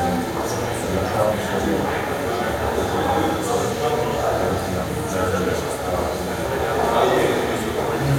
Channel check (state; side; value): identical; both; correlation 1.00